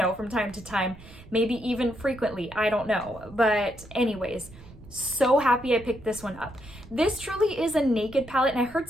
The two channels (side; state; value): right; noise; rumble, 20 dB below the sound